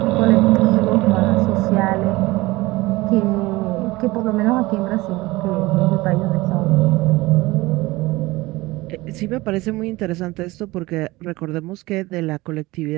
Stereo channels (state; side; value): quieter; left; 20.5 dB